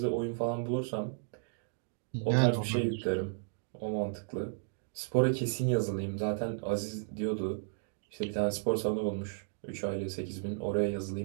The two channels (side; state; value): left; silent; digital silence